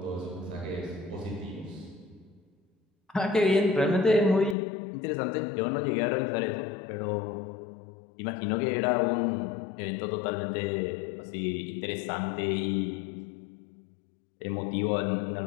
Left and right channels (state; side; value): drops out; right; at 4.5 s